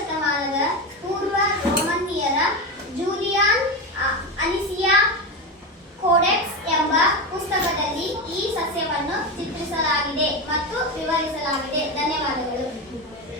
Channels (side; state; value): both; normal; correlation 0.17